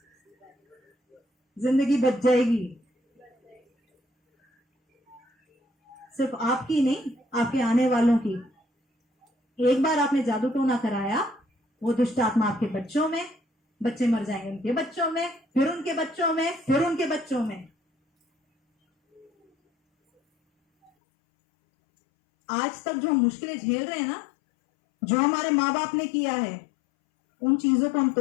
जिंदगी बच जाएगी। सिर्फ आपकी नहीं, आपके आने वालों की। एक बार आपने जादू टोना कराया, वो दुष्ट आत्मा आपके बच्चों में, बच्चे मर जाएंगे, उनके बच्चों में, फिर उनके बच्चों में, फिर उनके बच्चों में। आज तक जो हम मुश्किलें झेल रहे हैं ना, जो हमारे माँ बाप ने किया है, उन चीजों को हम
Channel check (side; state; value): right; drops out; at 20.9 s